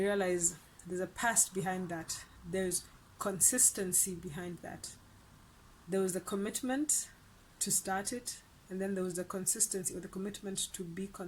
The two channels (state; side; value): identical; both; correlation 1.00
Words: realize there's a past behind that. There's consistency behind that. There was the commitment to start it, and then there was the consistency, or the commitment to be